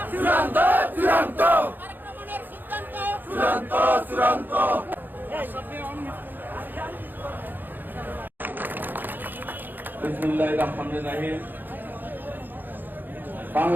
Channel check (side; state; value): left; late; 0.090 ms